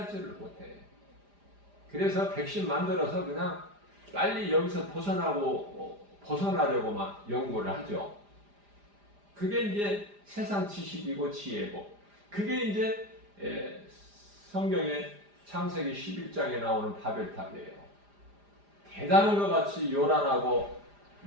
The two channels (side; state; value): left; late; 4.9 ms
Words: 못해. 그래서 백신 만들어서 그냥 빨리 여기서 벗어나려고만 연구를 하죠. 그게 이제 세상 지식이고 지혜고, 그게 이제 성경의 창세기 11장에 나오는 바벨탑이에요. 대단한 것 같이 요란하고